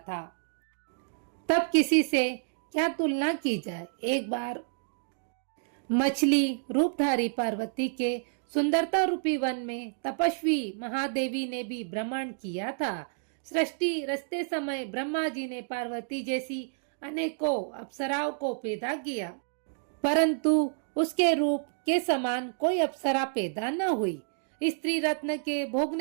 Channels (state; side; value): silent; left; digital silence